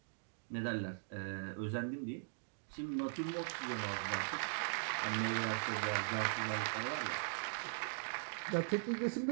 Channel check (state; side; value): silent; left; digital silence